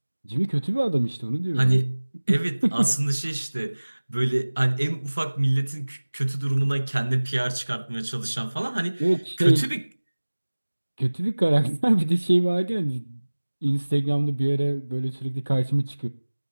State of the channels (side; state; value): both; inverted; correlation -1.00